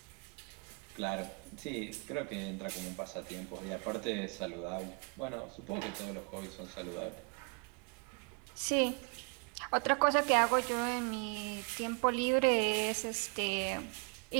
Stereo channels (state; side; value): quieter; left; 35.1 dB